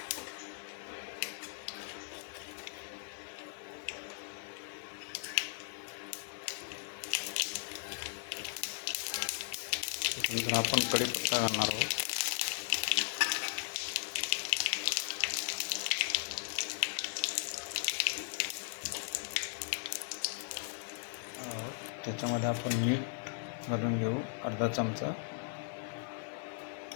त्याच्यानंतर आपण कढीपत्ता घालणार आहोत. त्याच्यामध्ये आपण मीठ घालून घेऊ अर्धा चमचा.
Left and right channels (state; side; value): silent; right; 53 dB below the other